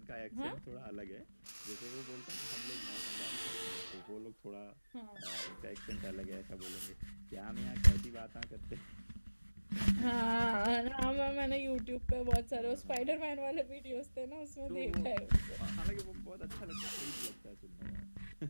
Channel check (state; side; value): inverted; both; correlation -1.00